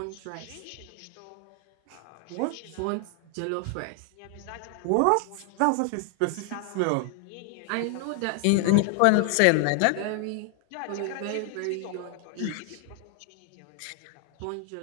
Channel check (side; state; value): both; different; correlation 0.00